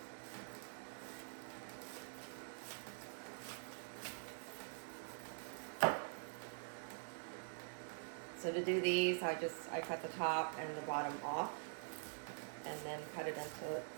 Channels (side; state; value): left; silent; digital silence